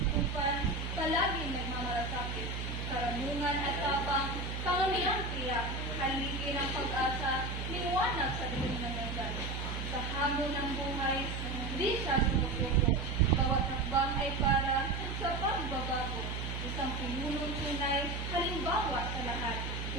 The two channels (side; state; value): right; noise; hum, 4 dB below the sound